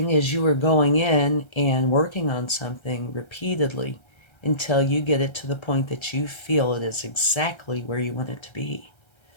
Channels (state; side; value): late; right; 1.3 ms